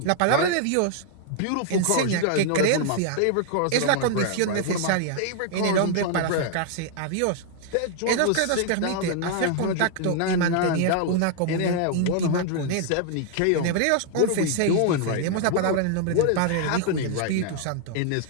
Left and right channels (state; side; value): different; both; correlation 0.00